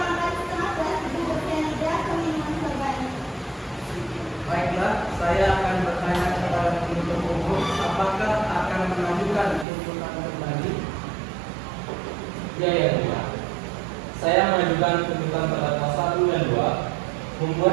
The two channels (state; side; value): drops out; left; at 9.7 s